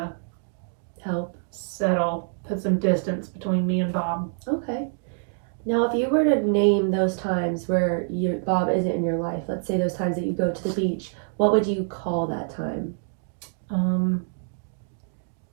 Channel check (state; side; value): silent; left; digital silence